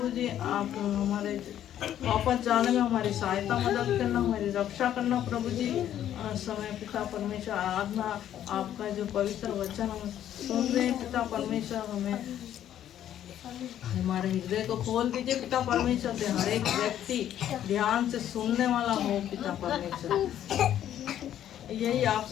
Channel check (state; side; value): quieter; right; 11.0 dB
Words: जी। आप हमारे वापस जाने में हमारी सहायता मदद करना, हमारी रक्षा करना प्रभु जी। समय पिता परमेश्वर आराधना आपका जो पवित्र वचन हम सुन रहे हैं पिता परमेश्वर, हमें हमारे हृदय को खोल दीजिए पिता परमेश्वर से हर एक व्यक्ति ध्यान से सुनने वाला हो पिता परमेश्वर। यही